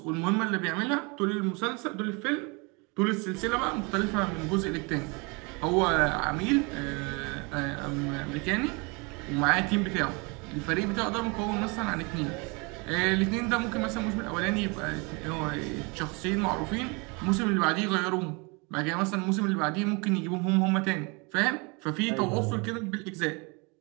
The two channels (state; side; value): quieter; left; 29.9 dB